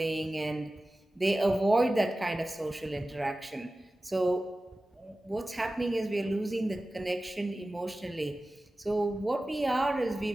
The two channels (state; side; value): normal; both; correlation 0.96